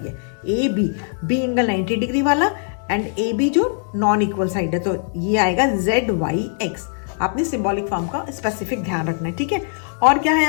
ए बी एंगल 90 डिग्री वाला एंड ए बी जो नॉन इक्वल साइड है, तो ये आएगा जेड वाई एक्स। आपने सिंबॉलिक फॉर्म का स्पेसिफिक ध्यान रखना है, ठीक है। और क्या है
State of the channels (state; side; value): silent; right; 65 dB below the other